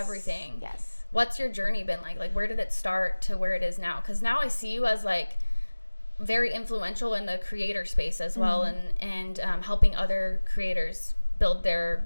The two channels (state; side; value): inverted; both; correlation -1.00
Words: Yes. What's your journey been like? Like, where did it start to where it is now? Because now I see you as like very influential in the creator space as well, and helping other creators build